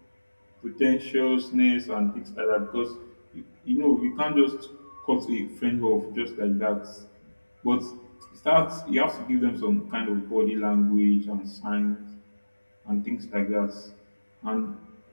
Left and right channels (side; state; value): both; inverted; correlation -1.00